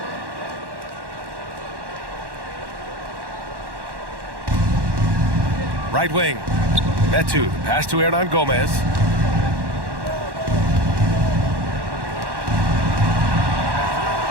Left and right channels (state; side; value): late; left; 1.1 ms